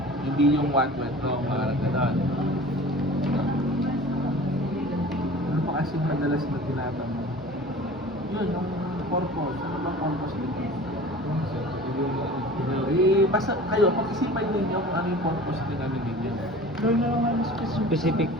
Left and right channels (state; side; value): normal; both; correlation 0.41